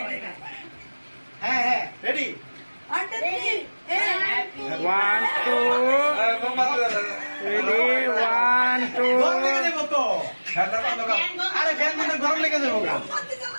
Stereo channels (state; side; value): inverted; both; correlation -1.00